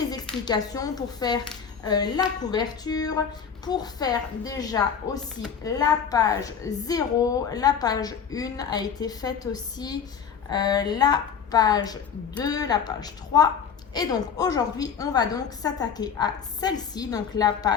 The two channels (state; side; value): quieter; right; 7.1 dB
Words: explications pour faire la couverture, pour faire déjà aussi la page 0, la page 1 a été faite aussi, la page 2, la page 3. Et donc aujourd'hui, on va donc s'attaquer à celle-ci, donc la